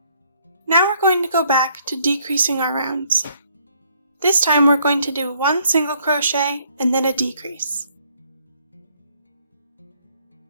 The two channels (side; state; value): both; inverted; correlation -0.66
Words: Now we're going to go back to decreasing our rounds. This time we're going to do 1 single crochet and then a decrease.